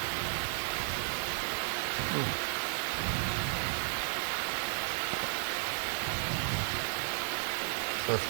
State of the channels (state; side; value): silent; left; digital silence